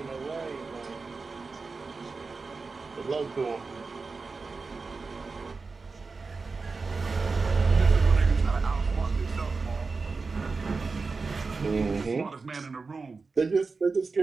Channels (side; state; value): left; quieter; 4.3 dB